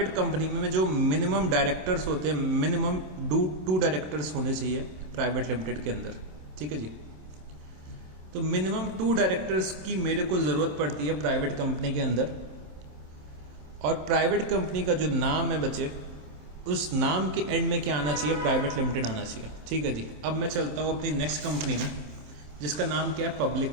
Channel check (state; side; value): late; left; 27 ms